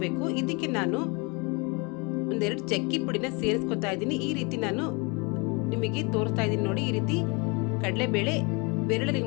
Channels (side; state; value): right; quieter; 30.1 dB